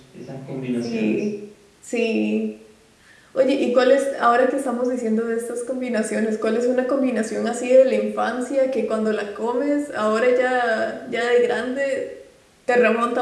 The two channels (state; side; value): identical; both; correlation 1.00